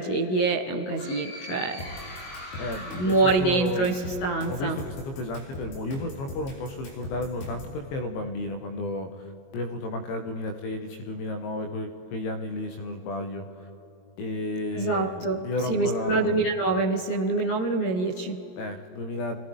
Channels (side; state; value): right; late; 22 ms